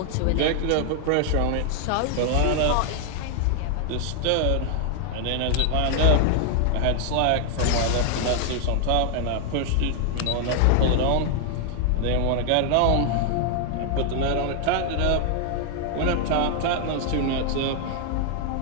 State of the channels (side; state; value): both; different; correlation 0.00